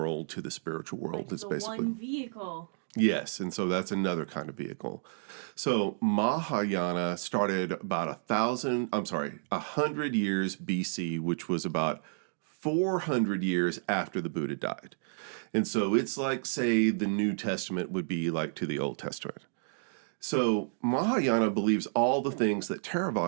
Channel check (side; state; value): left; silent; digital silence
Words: to the spiritual world. It's the basically one vehicle. Yes, and so that's another kind of vehicle. So Mahayana started about 100 years BC, which was about 400 years after the Buddha died. And so it's like, say, the New Testament would be like to the Old Testament. So Mahayana believes all the things that